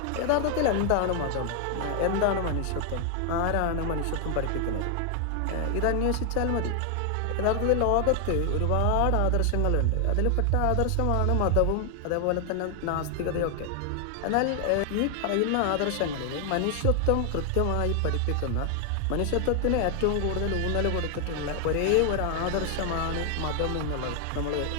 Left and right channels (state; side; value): different; both; correlation 0.00